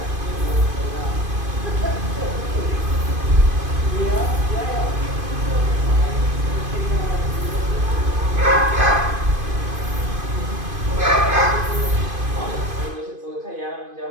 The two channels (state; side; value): late; left; 2.5 ms